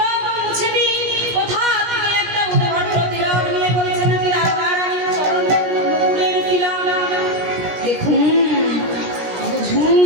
মুছে দিন। কোথা থেকে একটা উদ্ভট তিলক নিয়ে বলছে নাকি রাধারানীর চরণের নুপুরের তিলক। দেখুন,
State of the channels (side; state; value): left; late; 17 ms